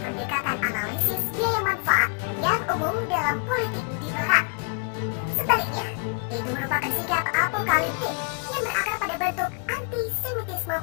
analisis biaya manfaat yang umum dalam politik di Barat. Sebaliknya, itu merupakan sikap apokaliptik yang berakar pada bentuk antisemitisme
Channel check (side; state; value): right; quieter; 34.6 dB